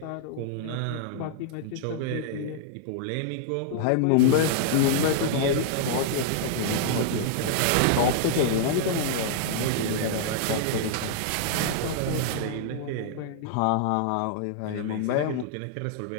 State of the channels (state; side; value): different; both; correlation -0.01